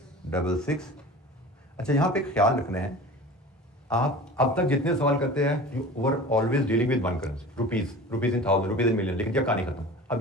अच्छा, यहां पे ख्याल रखना है, आप अब तक जितने सवाल करते हैं you were always dealing with one currency, rupees in 1000, rupees in million, लेकिन जब कहानी खत्म। अब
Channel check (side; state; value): both; normal; correlation 0.38